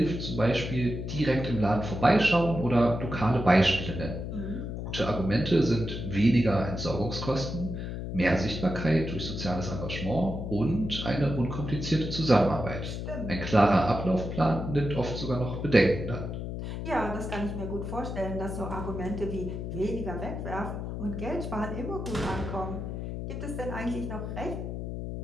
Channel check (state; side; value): noise; left; hum, 5 dB below the sound